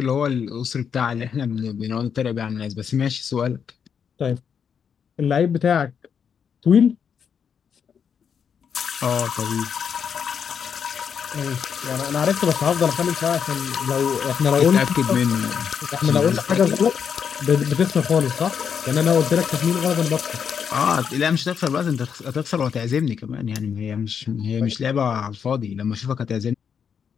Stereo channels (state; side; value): quieter; right; 7.2 dB